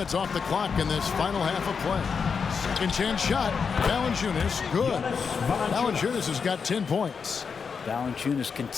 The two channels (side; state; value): right; quieter; 5.8 dB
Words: off the clock in this final half of play. Second chance shot. Valanciunas, good. Valanciunas has got 10 points. Valanciunas